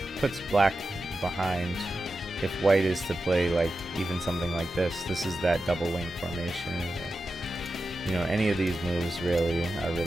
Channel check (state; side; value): normal; both; correlation 0.91